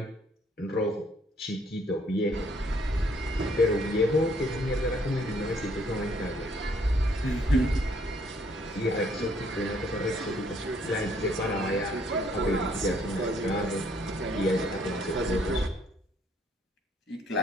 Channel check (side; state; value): both; normal; correlation 0.66